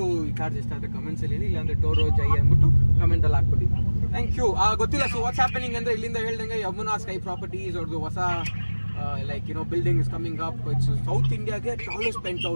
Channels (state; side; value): inverted; both; correlation -1.00